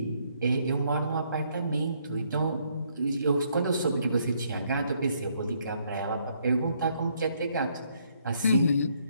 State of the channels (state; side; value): inverted; both; correlation -0.71